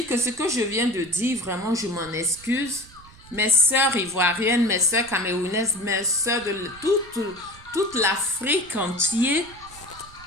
que ce que je viens de dire, vraiment, je m'en excuse. Mes sœurs ivoiriennes, mes sœurs camerounaises, mes sœurs de toute l'Afrique entière,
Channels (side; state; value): right; noise; rumble, 22 dB below the sound